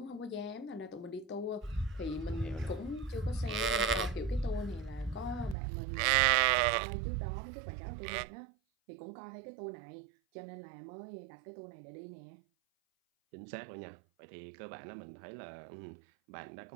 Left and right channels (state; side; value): drops out; left; at 5.6 s